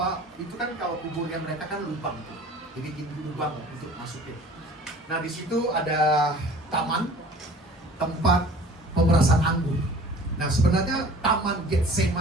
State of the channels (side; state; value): both; normal; correlation 0.46